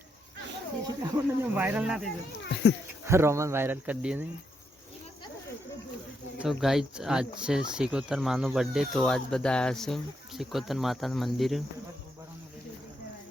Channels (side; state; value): both; normal; correlation 0.79